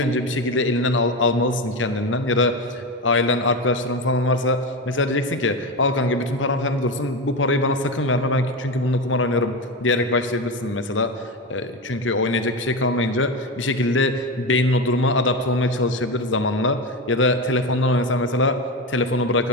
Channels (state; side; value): normal; both; correlation 0.18